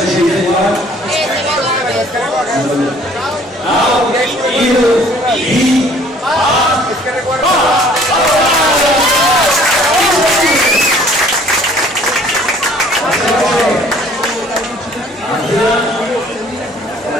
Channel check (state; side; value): normal; both; correlation 0.56